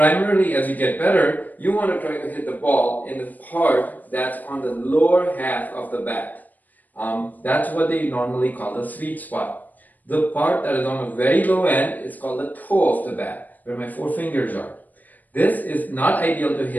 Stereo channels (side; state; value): right; late; 0.083 ms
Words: as you get better, you want to try to hit the ball in the part that's on the lower half of the bat. That's what they normally call the sweet spot. The part that is on the very low end is called the toe of the bat, where my four fingers are. This is not ideal to